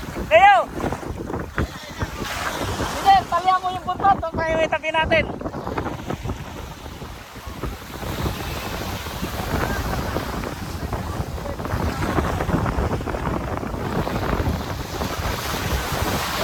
Kayo. Sige, talihan mo yung buntot. Huwag tayo itabi natin.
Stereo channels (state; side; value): identical; both; correlation 1.00